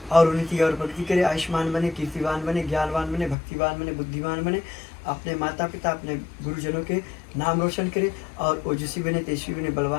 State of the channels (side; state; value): right; drops out; at 3.4 s